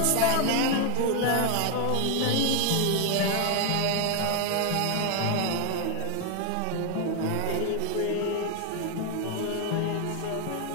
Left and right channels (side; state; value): both; different; correlation 0.01